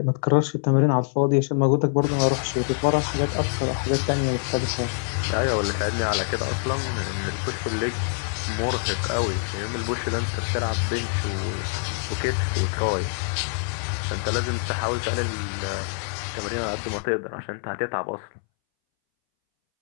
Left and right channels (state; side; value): silent; right; 62 dB below the other